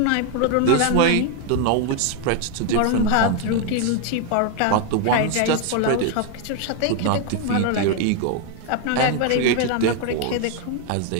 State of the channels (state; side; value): different; both; correlation 0.01